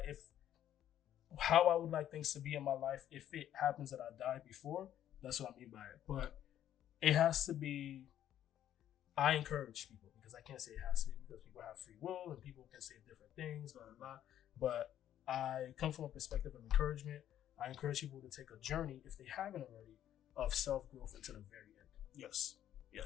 if how I would like things to be in my life, if it happens that I die before, that's what I mean by it. But it has to be. I encourage people because I can't say it has to be because people have free will and people can say different things, blah, blah, blah. But I come from a perspective of encouragement. I encourage people to take a journey, if they haven't already, of self-growth until the very end. Yes.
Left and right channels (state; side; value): quieter; right; 11.1 dB